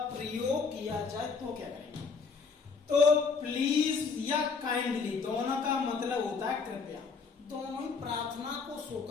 प्रयोग किया जाए तो क्या करेंगे, तो प्लीज या काइंडली दोनों का मतलब होता है कृपया, दोनों ही प्रार्थना को शो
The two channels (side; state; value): right; quieter; 5.1 dB